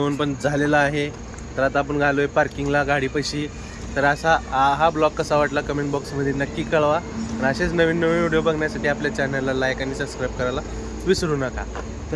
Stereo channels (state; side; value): identical; both; correlation 1.00